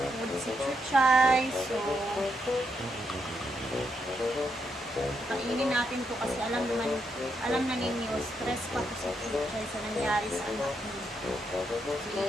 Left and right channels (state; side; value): normal; both; correlation 0.80